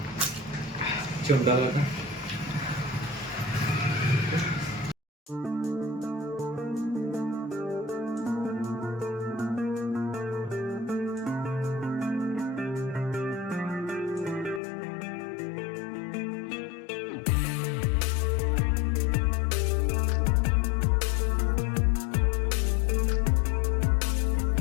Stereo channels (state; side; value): drops out; right; at 14.6 s